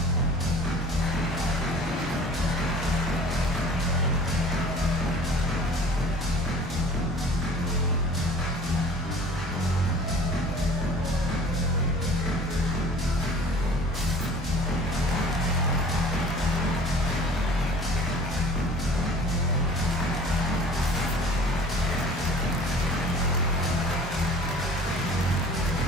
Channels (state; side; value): normal; both; correlation 0.47